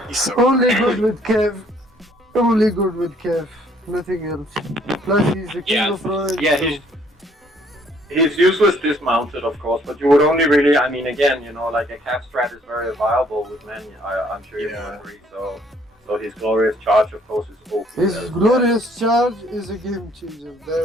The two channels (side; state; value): both; normal; correlation 0.63